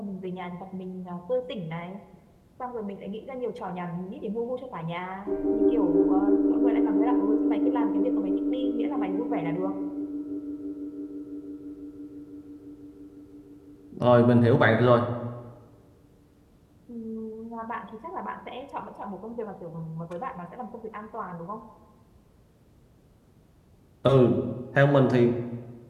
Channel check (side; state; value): both; identical; correlation 1.00